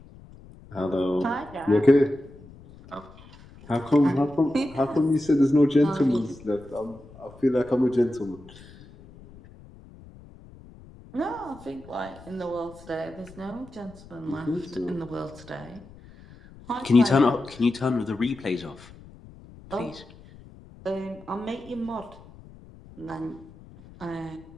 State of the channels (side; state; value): left; noise; rumble, 21 dB below the sound